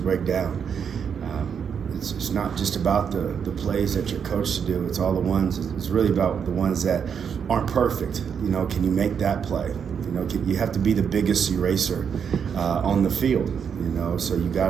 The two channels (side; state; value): left; quieter; 7.2 dB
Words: down. It's not just about the plays that you're coached to do. It's all the ones. It's really about the ones that aren't perfect. Can you make that play? You have to be the biggest eraser on the field. So you got